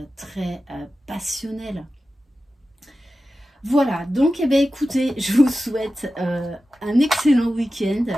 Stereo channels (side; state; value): both; normal; correlation 0.93